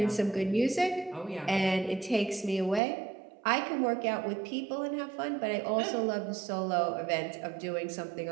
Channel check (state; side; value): drops out; left; at 2.8 s